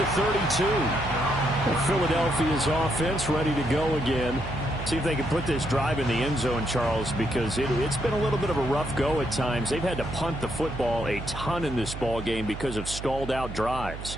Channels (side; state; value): right; noise; hum, 9 dB below the sound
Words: 32. Philadelphia's offense ready to go again. See if they can put this drive in the end zone, Charles, because it's been a little bit of a rough go at times. They've had to punt the football a ton in this ball game because of stalled-out